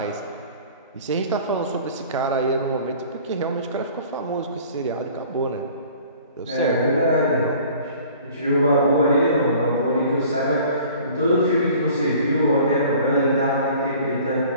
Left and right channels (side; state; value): both; inverted; correlation -0.49